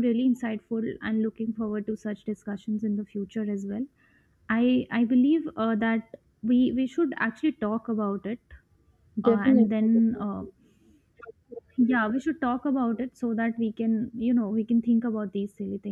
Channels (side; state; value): both; identical; correlation 1.00